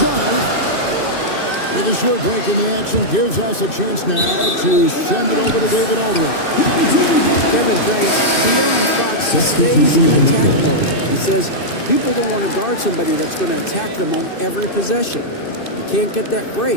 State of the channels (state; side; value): late; right; 2.6 ms